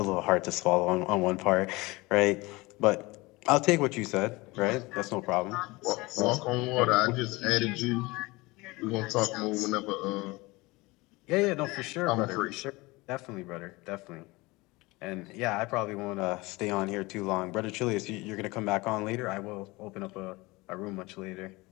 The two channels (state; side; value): quieter; right; 22.6 dB